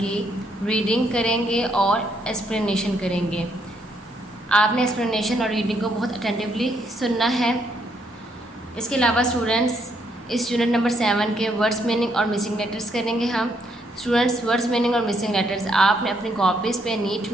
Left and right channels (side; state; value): both; normal; correlation 0.73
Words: reading करेंगे और explanation करेंगे। आपने explanation और रीडिंग को बहुत अटेंटिवली सुनना है। इसके अलावा स्टूडेंट्स इस यूनिट नंबर 7 के वर्ड्स मीनिंग और मिसिंग लेटर्स करेंगे हम। स्टूडेंट्स, वर्ड्स मीनिंग और मिसिंग लेटर्स आपने अपनी कॉपीज़ पे नीट